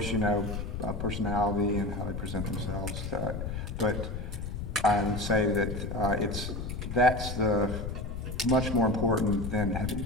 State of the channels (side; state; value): left; noise; rumble, 5 dB below the sound